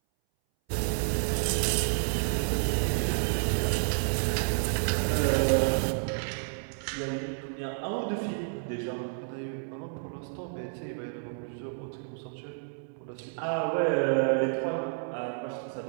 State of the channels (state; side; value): silent; left; 58 dB below the other